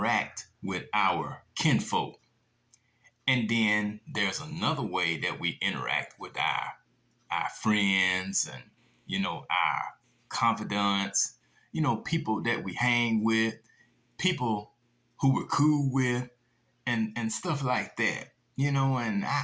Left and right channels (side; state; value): both; identical; correlation 1.00